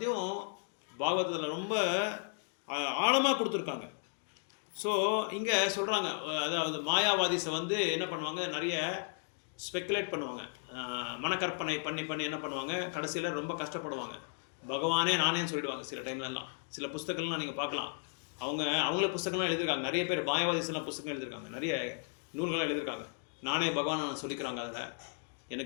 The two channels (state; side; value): silent; right; 55 dB below the other